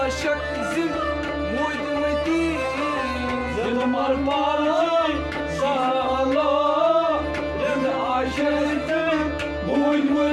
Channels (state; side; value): identical; both; correlation 1.00